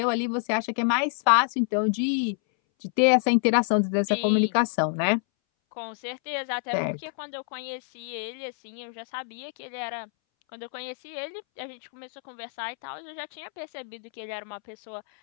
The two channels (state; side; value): silent; right; 60 dB below the other